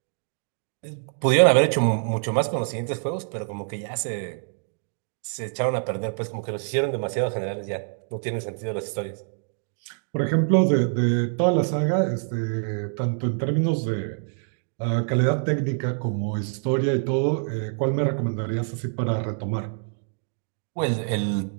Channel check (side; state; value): left; silent; 61 dB below the other